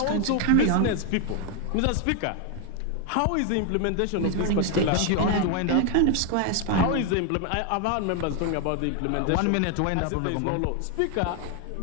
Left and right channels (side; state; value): both; different; correlation 0.01